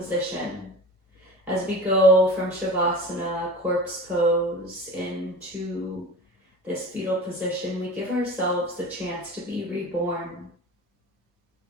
as we go from Shavasana, corpse pose, into this fetal position. We give ourselves the chance to be reborn.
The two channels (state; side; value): normal; both; correlation 0.35